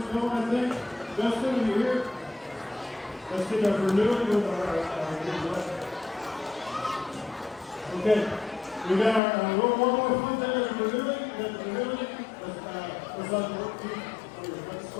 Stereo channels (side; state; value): right; drops out; at 9.2 s